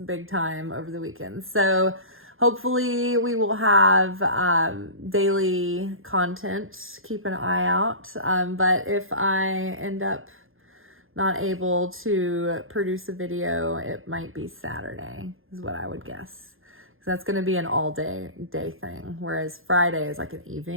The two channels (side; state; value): left; late; 0.60 ms